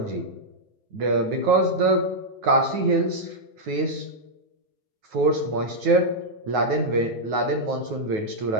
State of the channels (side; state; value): left; late; 9.4 ms